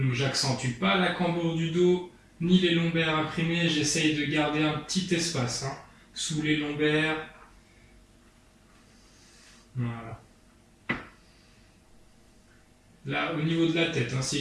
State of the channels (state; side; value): identical; both; correlation 1.00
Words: j'accentue pas la cambrure du dos ni les lombaires imprimés, j'essaye de garder un petit espace sous les lombaires. Voilà. Là, au niveau de la tête,